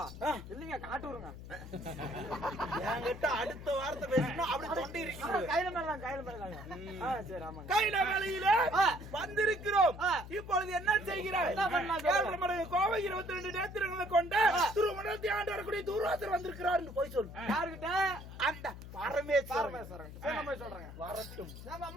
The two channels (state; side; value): noise; left; hum, 13 dB below the sound